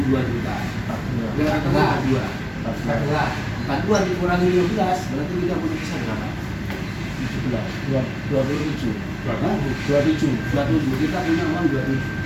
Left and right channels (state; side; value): identical; both; correlation 1.00